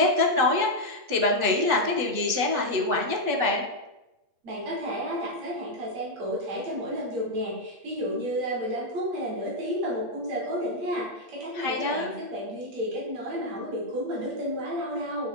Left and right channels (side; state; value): left; late; 8.5 ms